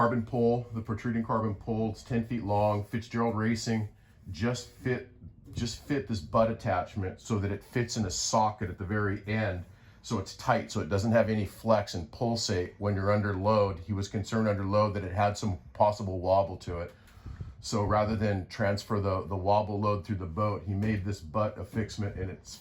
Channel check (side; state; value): both; identical; correlation 1.00